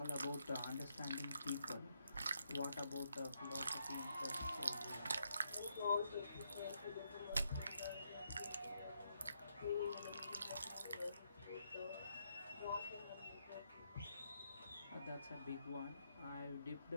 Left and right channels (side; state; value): both; inverted; correlation -0.78